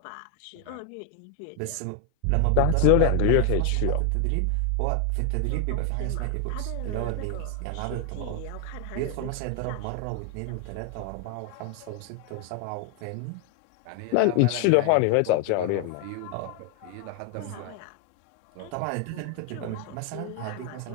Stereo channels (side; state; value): both; different; correlation 0.01